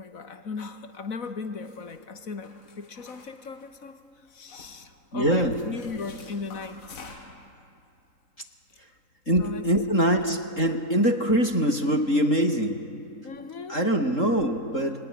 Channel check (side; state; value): right; late; 3.8 ms